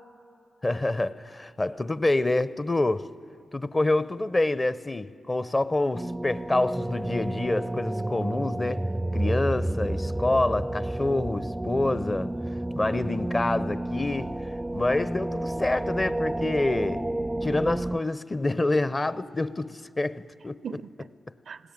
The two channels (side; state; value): both; normal; correlation 0.98